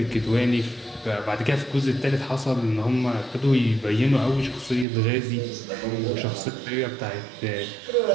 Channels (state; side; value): drops out; left; at 4.9 s